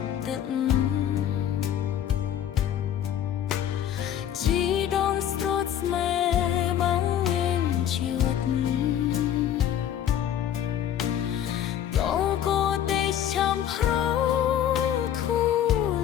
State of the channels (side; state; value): right; quieter; 10.3 dB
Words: ទឹកជីដូនស្រួតស្មែបងមានជីវិតចាំប្រធូ